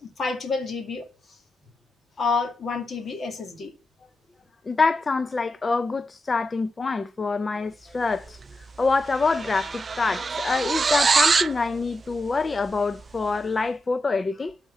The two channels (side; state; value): both; normal; correlation 0.87